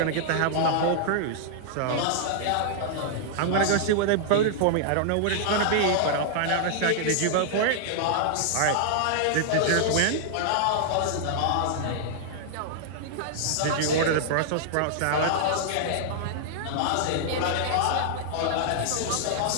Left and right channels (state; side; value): different; both; correlation -0.01